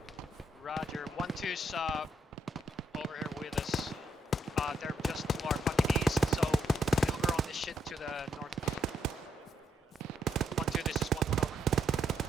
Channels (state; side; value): normal; both; correlation 0.77